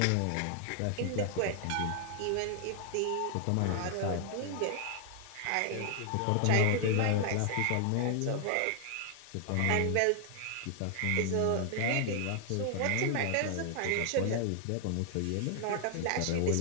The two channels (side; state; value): both; different; correlation 0.00